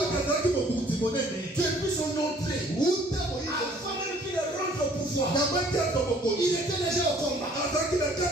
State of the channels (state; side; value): normal; both; correlation 0.57